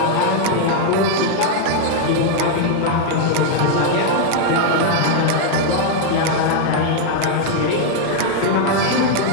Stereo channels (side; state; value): both; different; correlation 0.00